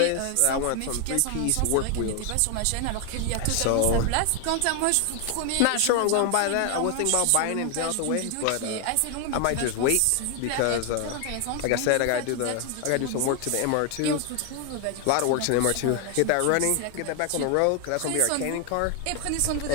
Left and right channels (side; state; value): both; different; correlation 0.01